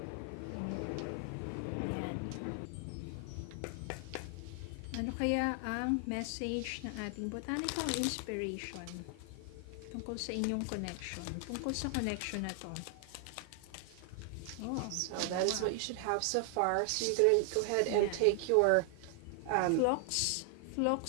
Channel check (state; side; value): different; both; correlation 0.00